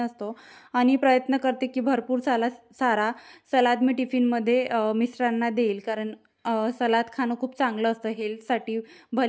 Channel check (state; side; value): identical; both; correlation 1.00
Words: असतो आणि प्रयत्न करते की भरपूर सारा सलाद मी टिफिनमध्ये मिस्टरांना देईल, कारण सलाद खाणं खूप चांगलं असतं हेल्थसाठी.